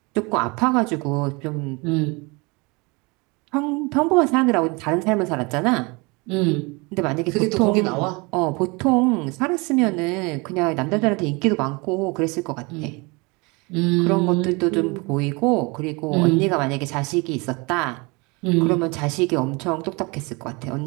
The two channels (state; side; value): quieter; left; 27.5 dB